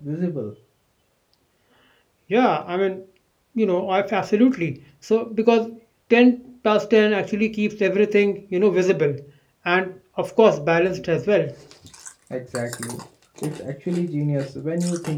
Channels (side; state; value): both; identical; correlation 1.00